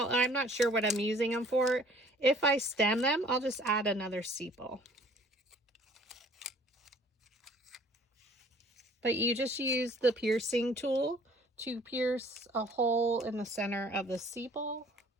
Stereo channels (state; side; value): normal; both; correlation 0.54